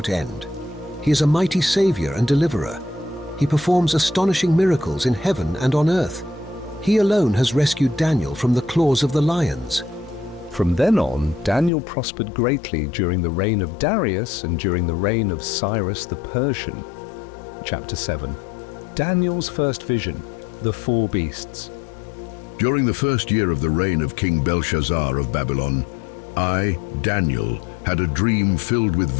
end. He is a mighty Savior and Deliverer. He performs astonishing miracles in heaven and on earth. He alone has rescued Daniel from the claws of the lions. From then on, Daniel prospered greatly during the reign of Darius and during the reign of Cyrus the Persian. Chapter 7. Daniel's first vision, the 4 beasts. During the first year of the reign of King Belshazzar of Babylon, I, Daniel, had a dream filled with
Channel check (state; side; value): drops out; right; at 11.7 s